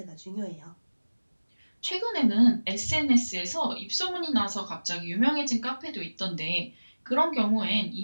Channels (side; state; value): both; inverted; correlation -1.00